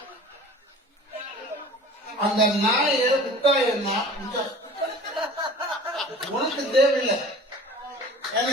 அந்த நாயை முட்டாயன்னா உனக்கு தேவையில்லை. ஏன்னா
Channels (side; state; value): both; normal; correlation 0.43